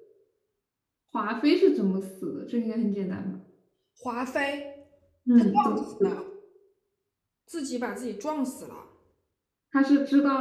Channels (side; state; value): both; identical; correlation 1.00